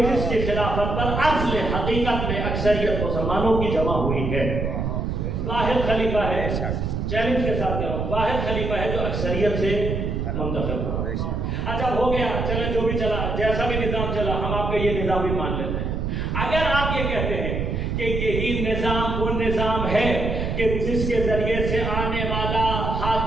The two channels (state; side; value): noise; right; rumble, 1 dB below the sound